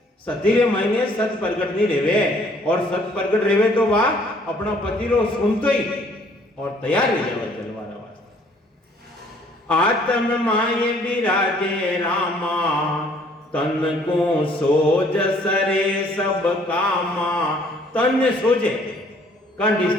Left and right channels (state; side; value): normal; both; correlation 0.60